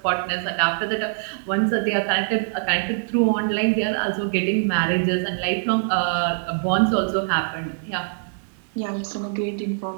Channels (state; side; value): silent; left; digital silence